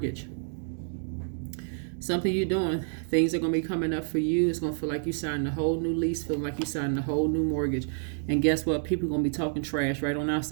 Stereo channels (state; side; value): silent; left; digital silence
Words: Something you're doing. Things are going to be coming up for you. It's going to feel like you signed a whole new lease, feeling like you signed a whole new mortgage. And guess what? People are going to be talking trash right on